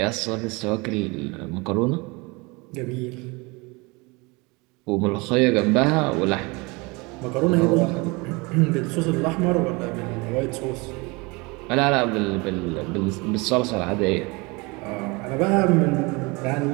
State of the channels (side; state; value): left; quieter; 26.5 dB